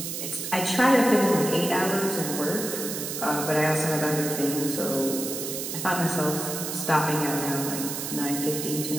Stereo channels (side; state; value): right; noise; hiss, 5 dB below the sound